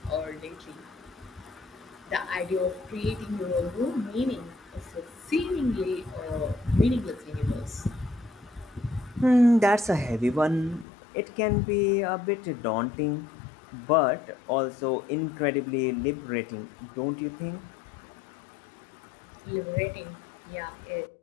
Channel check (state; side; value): drops out; right; at 10.9 s